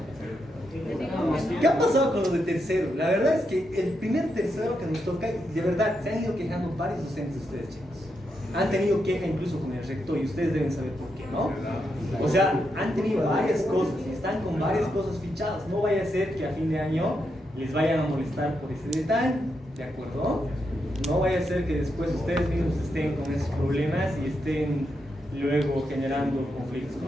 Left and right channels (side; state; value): both; normal; correlation 0.83